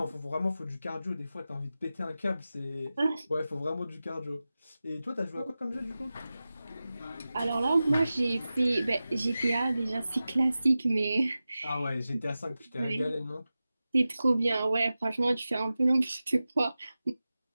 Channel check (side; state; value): both; inverted; correlation -0.94